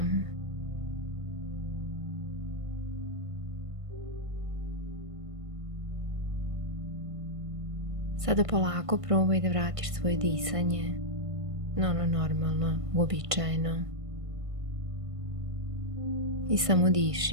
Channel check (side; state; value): left; late; 1.5 ms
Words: Sada polako probaj da vratiš svoje disanje na ono normalno, uobičajeno. I samo